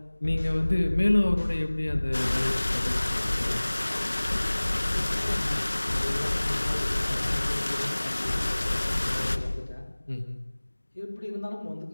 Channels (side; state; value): both; inverted; correlation -1.00